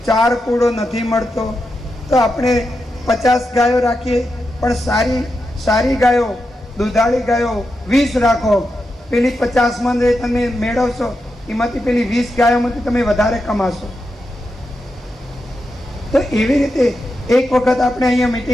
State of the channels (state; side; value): normal; both; correlation 0.87